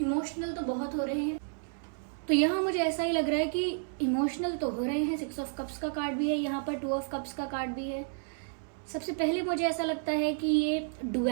तो बहुत हो रहे हैं। तो यहाँ मुझे ऐसा ही लग रहा है कि इमोशनल तो हो रहे हैं। 6 ऑफ कप्स का कार्ड भी है यहाँ पर, 2 ऑफ कप्स का कार्ड भी है। सबसे पहले मुझे ऐसा लगता है कि ये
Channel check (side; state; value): left; silent; 57 dB below the other